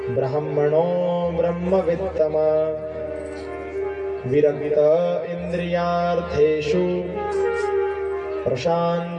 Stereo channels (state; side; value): identical; both; correlation 1.00